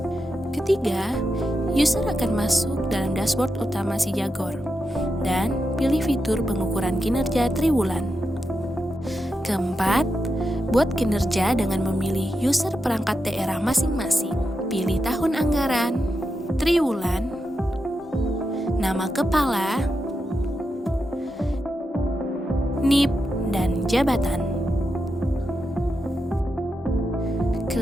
Ketiga, user akan masuk dalam dashboard utama SIJAGOR dan pilih fitur pengukuran kinerja triwulan. Keempat, buat kinerja dengan memilih user perangkat daerah masing-masing. Pilih tahun anggaran, triwulan, nama kepala, NIP, dan jabatan.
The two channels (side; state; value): both; normal; correlation 0.87